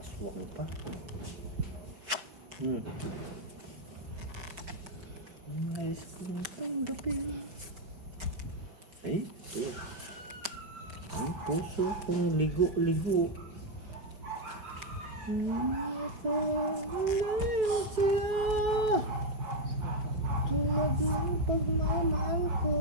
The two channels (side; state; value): left; late; 5.3 ms